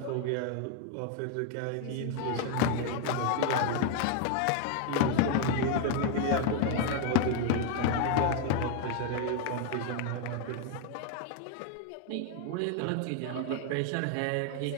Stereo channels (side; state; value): both; different; correlation 0.01